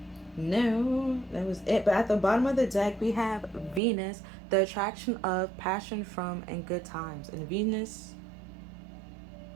No, that was it. But at the bottom of the deck, we have Venus, the attraction of, passion from, and good times. And Venus,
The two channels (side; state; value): left; drops out; at 3.8 s